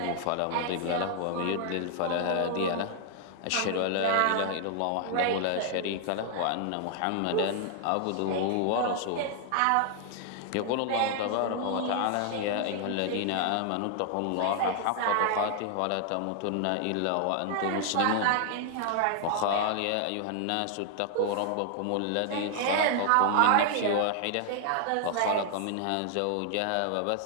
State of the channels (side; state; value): both; different; correlation 0.00